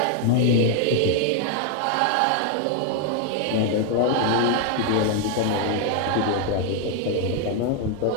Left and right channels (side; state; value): both; different; correlation 0.00